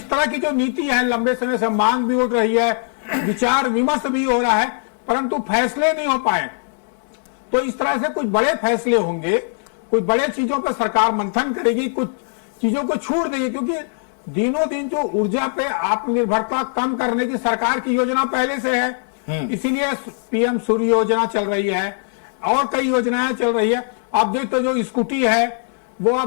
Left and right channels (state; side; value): silent; right; 65 dB below the other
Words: तरह की जो नीति है, लंबे समय से मांग भी उठ रही है, विचार विमर्श भी हो रहा है, परंतु फैसले नहीं हो पाए। तो इस तरह से कुछ बड़े फैसले होंगे, कुछ बड़े चीजों पर सरकार मंथन करेगी, कुछ चीजों को छूट देगी, क्योंकि दिनों दिन जो ऊर्जा पे आत्मनिर्भरता कम करने की सरकार की योजना पहले से है, इसीलिए पीएम सूर्य योजना चल रही है और कई योजनाएं चल रही है। आप देखते जो स्कूटी है वो